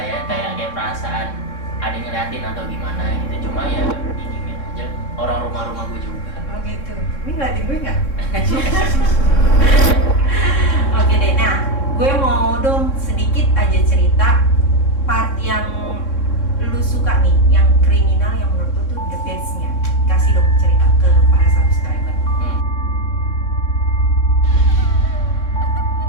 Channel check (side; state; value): right; late; 3.6 ms